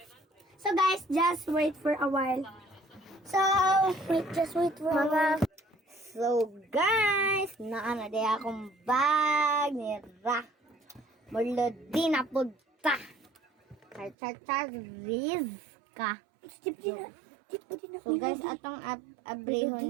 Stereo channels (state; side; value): drops out; left; at 14.2 s